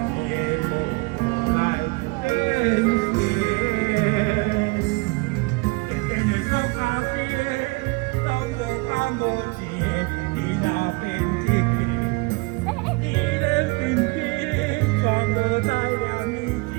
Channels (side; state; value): left; quieter; 26.8 dB